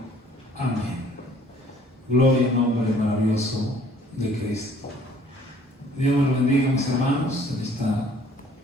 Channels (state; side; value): normal; both; correlation 0.57